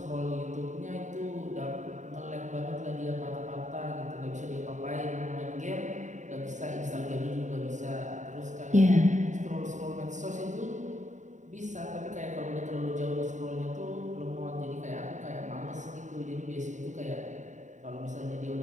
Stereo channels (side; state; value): left; late; 0.35 ms